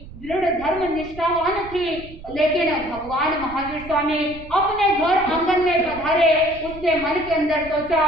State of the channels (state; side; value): noise; right; rumble, 16 dB below the sound